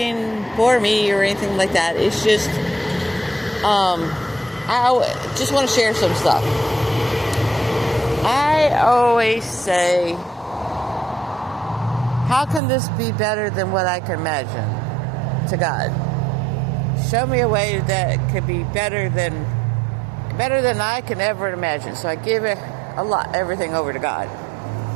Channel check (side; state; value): left; drops out; at 12.6 s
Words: for me or anything like that. It's just, I just want to share some stuff. I always say, how can this be better than what I can imagine to God? Show me a way that could be better than I can ever imagine. So I give it everything over to God.